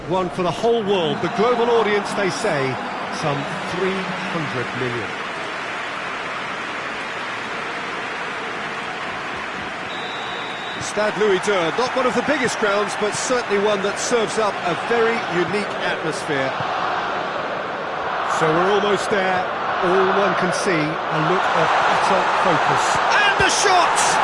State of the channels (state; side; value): identical; both; correlation 1.00